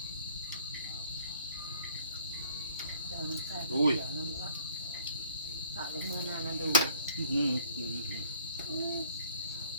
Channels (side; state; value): both; inverted; correlation -0.56